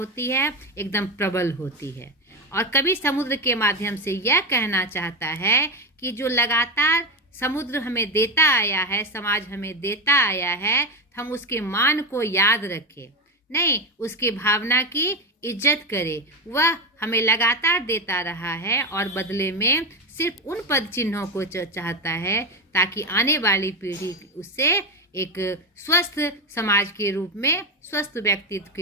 है, एकदम प्रबल होती है। और कवि समुद्र के माध्यम से यह कहना चाहता है कि जो लगातार समुद्र हमें देता आया है, समाज हमें देता आया है, हम उसके मान को याद रखें, नहीं उसकी भावना की इज्जत करें। वह हमें लगातार देता रहा है और बदले में सिर्फ उन पद चिन्हों को चाहता है ताकि आने वाली पीढ़ी उससे एक स्वस्थ समाज के रूप में, स्वस्थ व्यक्तित्व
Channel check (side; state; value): both; normal; correlation 0.16